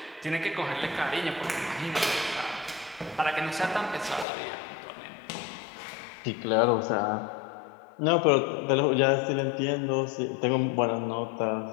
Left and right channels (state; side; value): drops out; right; at 4.2 s